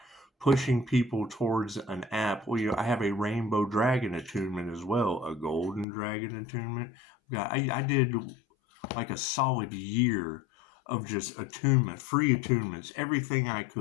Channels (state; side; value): drops out; right; at 5.9 s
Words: pushing people towards an app. I have a rainbow dragon attunement as well, a golden dragon attunement. I did like a solid year of just attunement, free attunements, everything I